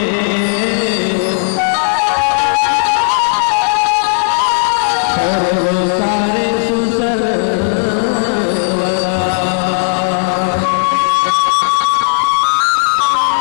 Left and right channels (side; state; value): right; silent; 68 dB below the other